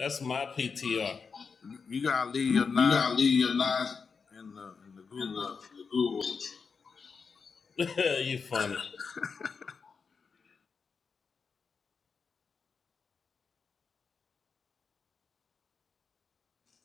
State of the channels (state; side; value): quieter; right; 5.4 dB